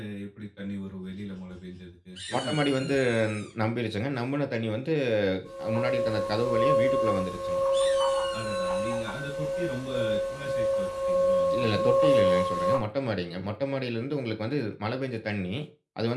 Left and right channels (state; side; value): identical; both; correlation 1.00